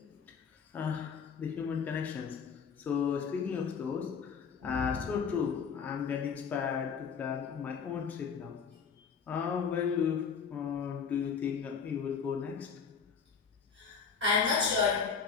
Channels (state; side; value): quieter; right; 6.3 dB